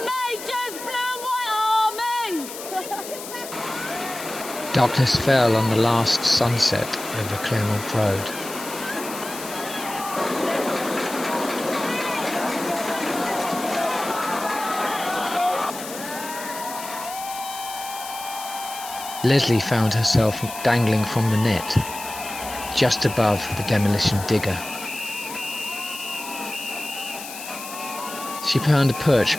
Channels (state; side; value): noise; left; hiss, 11 dB below the sound